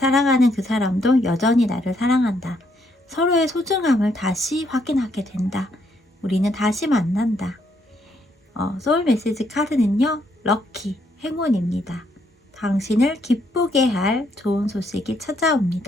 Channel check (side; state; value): both; normal; correlation 0.73